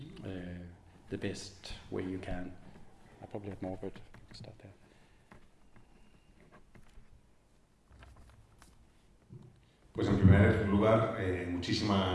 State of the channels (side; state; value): both; identical; correlation 1.00